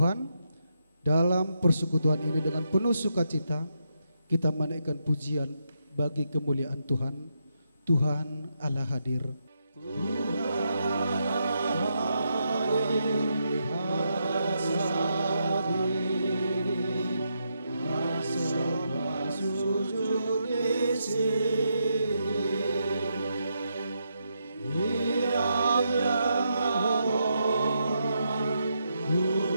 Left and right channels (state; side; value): inverted; both; correlation -0.81